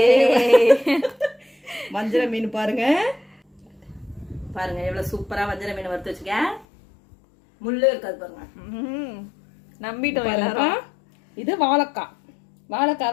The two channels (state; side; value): drops out; right; at 6.7 s